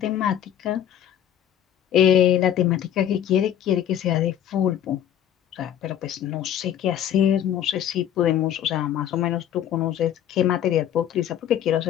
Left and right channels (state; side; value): quieter; right; 10.3 dB